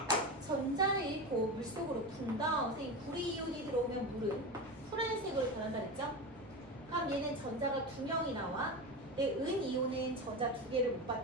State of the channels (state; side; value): noise; right; rumble, 27 dB below the sound